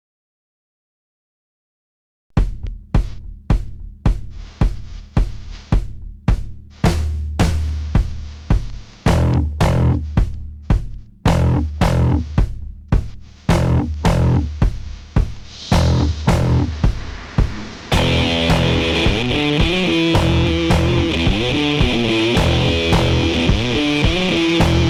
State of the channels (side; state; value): both; identical; correlation 1.00